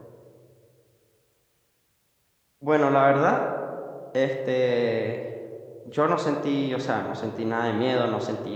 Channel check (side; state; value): both; identical; correlation 1.00